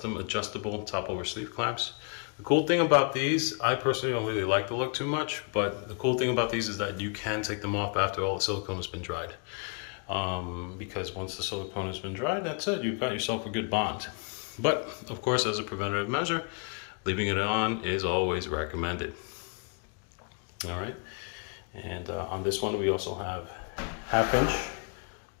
adjustable top over sleeve clamps. The cool thing about these, I personally don't really like the look too much, but the cool thing about these is that you can take them off after all the silicone has been dried. Because once the silicone has been dried, that's it, you've got yourself a good bond. But of course, as a preventative measure, leaving it on is always recommended. All right, and on this one, we also have 1/2 inch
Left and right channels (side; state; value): right; quieter; 37.7 dB